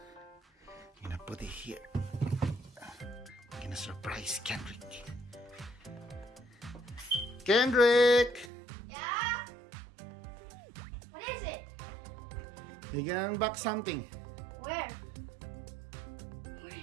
gonna put it here. I'm gonna surprise Kendrick. Kendrick! Yeah? What is it? You gonna unbox something. Where?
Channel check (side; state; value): left; drops out; at 8.5 s